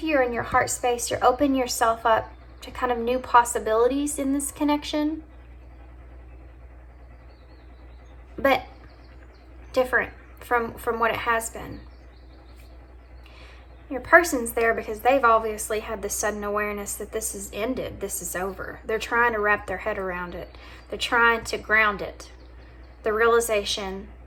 you are in your heart space, you're opening yourself up to kind of new possibilities in this connection. But different from what it has been. Your person's there because they've obviously had this sudden awareness that this is ended, this is over. They're trying to wrap their head around it. They're trying to ground it. The realization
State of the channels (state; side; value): identical; both; correlation 1.00